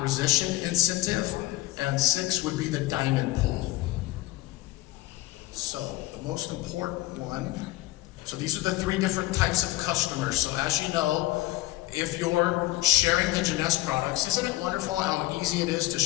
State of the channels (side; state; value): right; quieter; 17.6 dB